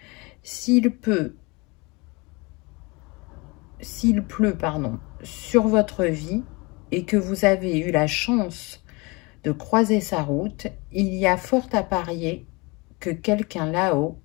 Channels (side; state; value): right; quieter; 26.7 dB